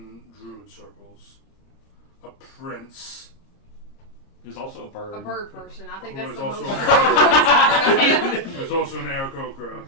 druid circles, a prince, Who's also a bird. A bird person. I think Who that's is the also most. a part who's also an Aarakocra,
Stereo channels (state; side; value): late; right; 30 ms